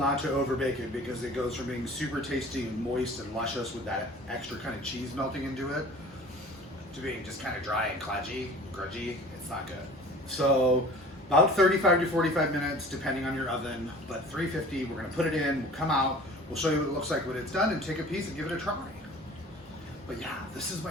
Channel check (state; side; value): normal; both; correlation 0.44